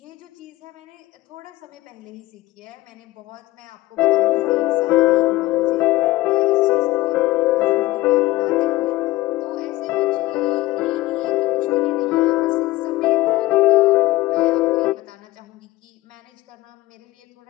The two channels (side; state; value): right; quieter; 18.2 dB